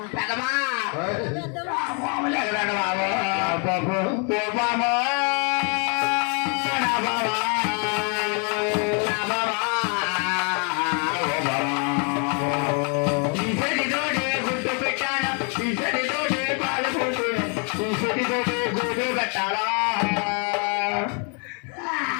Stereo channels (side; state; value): right; quieter; 37.8 dB